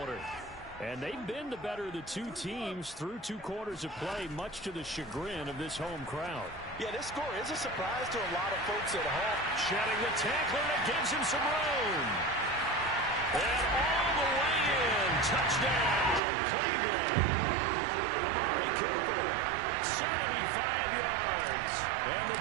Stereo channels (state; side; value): drops out; left; at 16.2 s